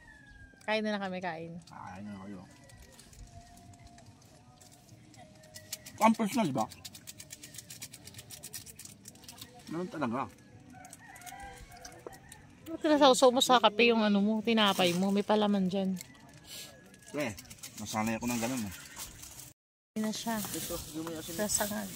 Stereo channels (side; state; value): both; identical; correlation 1.00